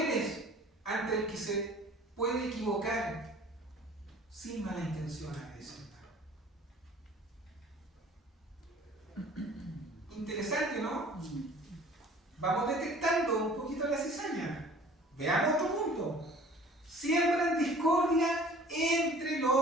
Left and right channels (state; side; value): normal; both; correlation 0.49